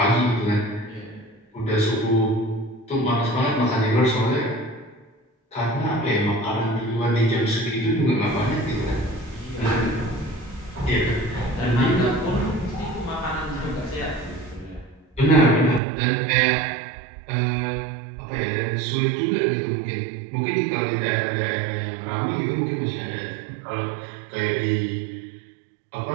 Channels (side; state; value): left; drops out; at 15.8 s